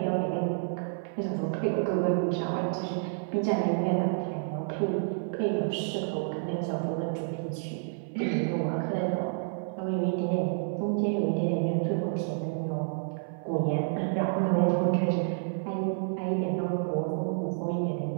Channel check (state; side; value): silent; left; 58 dB below the other